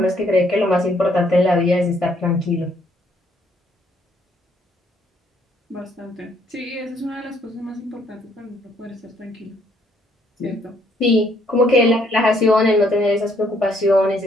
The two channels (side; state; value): both; normal; correlation 0.68